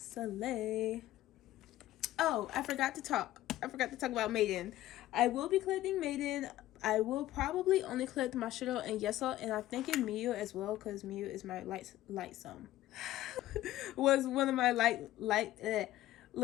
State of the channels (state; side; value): quieter; right; 14.9 dB